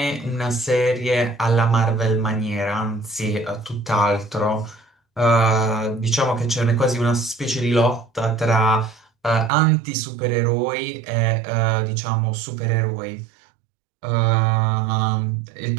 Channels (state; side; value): drops out; left; at 9.5 s